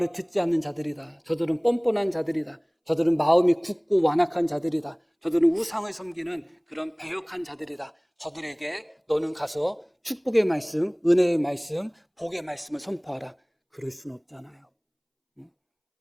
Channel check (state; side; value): identical; both; correlation 1.00